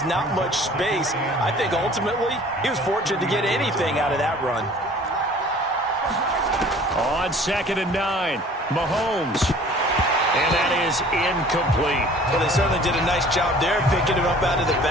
not much space. I think ultimately he was fortunate to get anything out of that run. On 2nd and 9, Mahomes. And that is incomplete. Well, they certainly did a nice job there, picking him up out of the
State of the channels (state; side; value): normal; both; correlation 0.49